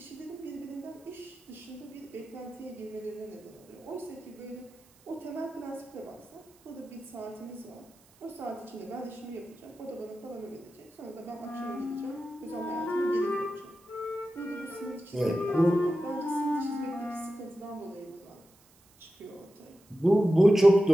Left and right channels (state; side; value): noise; right; hiss, 29 dB below the sound